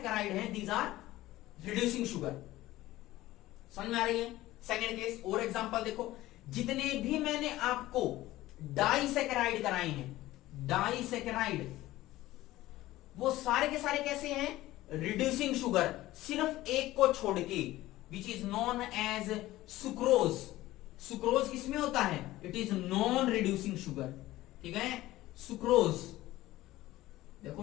हैं दीज आर रिड्यूसिंग शुगर। समझ में आ रही है? सेकंड केस और एग्जांपल देखो, जितने भी मैंने आपको डाइसेकेराइड कराए हैं, डाइसेकेराइड, वो सारे के सारे कैसे हैं, रिड्यूसिंग शुगर, सिर्फ एक को छोड़ के, which is known as sucrose. Sucrose किसमें होता है, it is non reducing sugar. ठीक है, सुक्रोज। देखो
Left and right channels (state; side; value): quieter; right; 16.5 dB